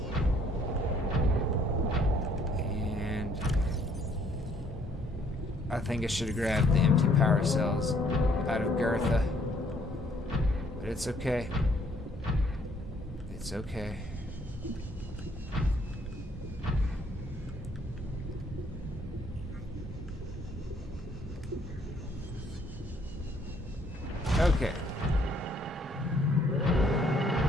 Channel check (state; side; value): normal; both; correlation 0.64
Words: I think I should have grabbed the empty power cells out of Girtha. But it's okay. It's okay. Okay.